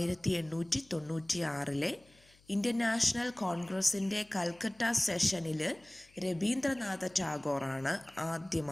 ഇന്ത്യൻ നാഷണൽ കോൺഗ്രസിൻ്റെ കൽക്കട്ട സെഷനിൽ രവീന്ദ്രനാഥ ടാഗോറാണ്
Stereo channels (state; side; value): noise; left; hum, 30 dB below the sound